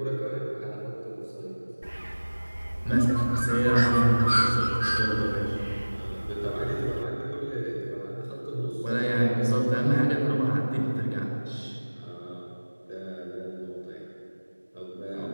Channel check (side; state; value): both; inverted; correlation -1.00